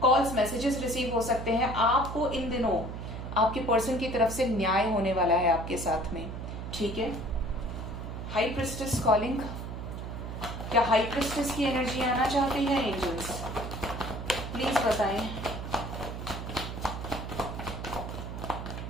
कॉल्स, मैसेजेस रिसीव हो सकते हैं। आपको इन दिनों आपके पर्सन की तरफ से न्याय होने वाला है आपके साथ में, ठीक है। हाई प्रिस्टेस कॉलिंग, क्या हाई प्रिस्टेस की एनर्जी आना चाहती है एंजल्स? प्लीज बताएं।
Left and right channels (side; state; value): right; noise; hum, 7 dB below the sound